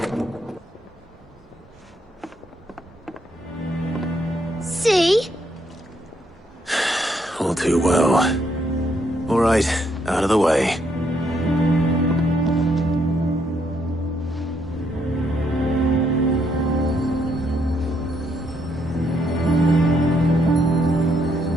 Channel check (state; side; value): normal; both; correlation 0.73